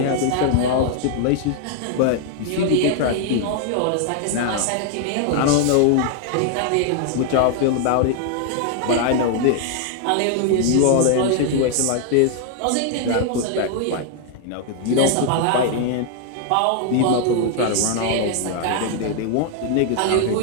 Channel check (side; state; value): both; different; correlation 0.00